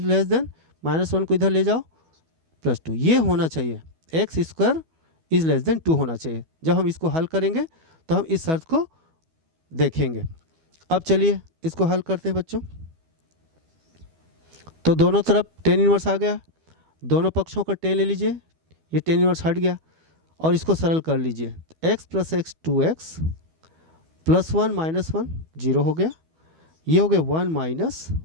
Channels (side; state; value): left; late; 12 ms